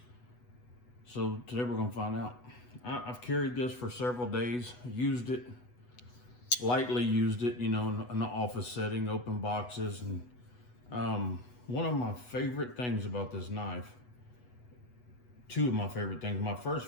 so today we're going to find out. I've carried this for several days, used it, lightly used it, in an office setting, open boxes. And one of my favorite things about this knife, two of my favorite things. My first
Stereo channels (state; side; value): late; right; 8.1 ms